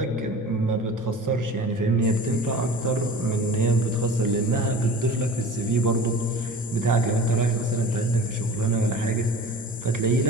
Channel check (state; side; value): normal; both; correlation 0.39